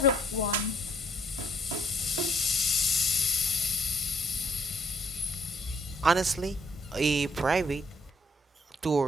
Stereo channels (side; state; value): both; normal; correlation 0.65